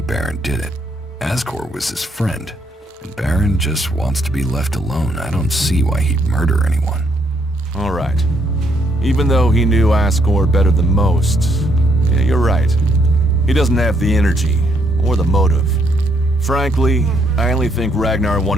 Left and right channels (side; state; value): both; normal; correlation 0.72